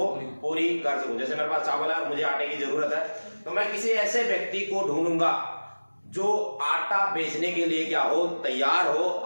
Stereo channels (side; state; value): both; inverted; correlation -1.00